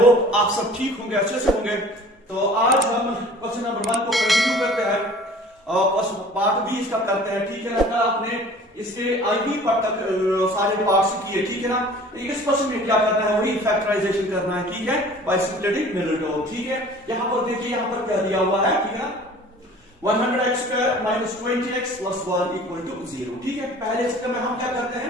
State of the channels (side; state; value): both; normal; correlation 0.47